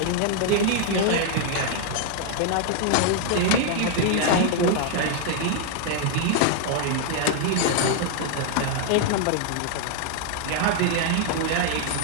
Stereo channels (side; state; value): both; different; correlation 0.00